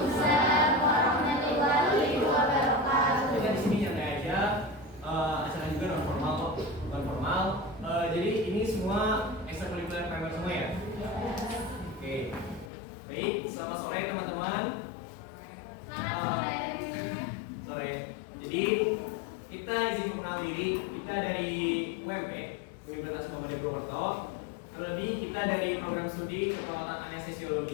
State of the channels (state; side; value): drops out; right; at 12.7 s